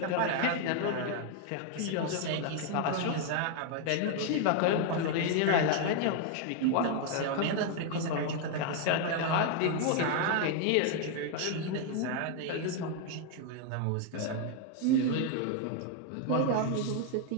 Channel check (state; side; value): different; both; correlation 0.00